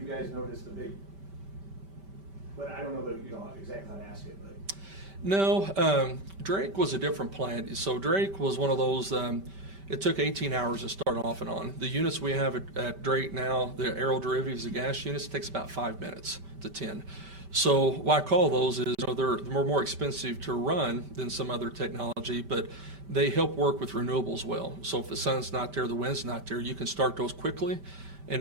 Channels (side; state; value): left; late; 5.1 ms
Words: you guys noticed a big, but I don't know exactly how to ask it, but. No, Drake was a different plant. So Drake was one of those, it took 18 hours to start off and on. The units we have at Drake now, the aero derivatives, the gas units, takes about 5 minutes to 10. So why I call those is they're more expensive to run than some other technology, but they help work with renewables well. So if the sun's not there, the wind's not there, you can start those quickly